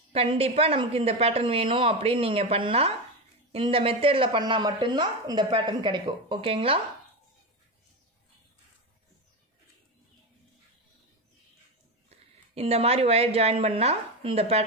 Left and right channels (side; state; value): both; normal; correlation 0.16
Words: கண்டிப்பாக நமக்கு இந்த பேட்டர்ன் வேணும் அப்படின்னு நீங்கள் பண்ணால், இந்த மெத்தடில் பண்ணால் மட்டும்தான் இந்த பேட்டர்ன் கிடைக்கும் ஓகேங்களா. இந்த மாதிரி ஒயர் ஜாயின் பண்ணால் இந்த